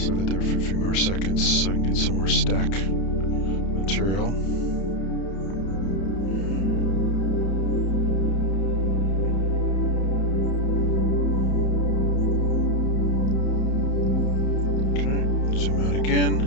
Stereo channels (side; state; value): right; late; 31 ms